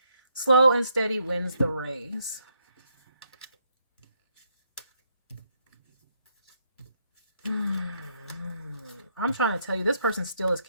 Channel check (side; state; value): both; inverted; correlation -0.74